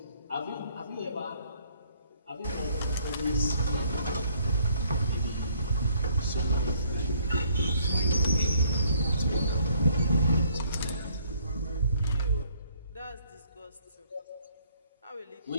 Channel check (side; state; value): both; inverted; correlation -0.64